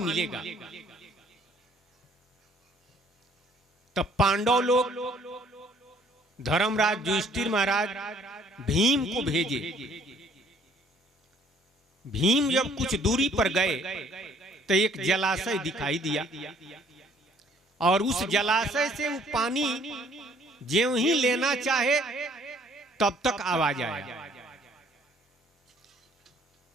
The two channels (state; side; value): normal; both; correlation 0.60